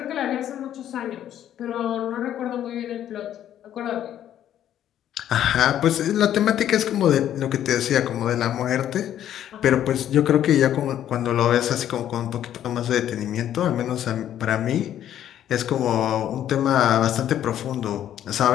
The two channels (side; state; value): right; quieter; 11.0 dB